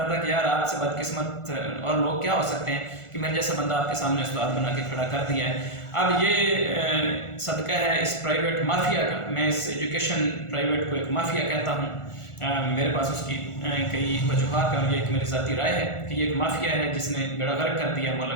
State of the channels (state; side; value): late; right; 1.4 ms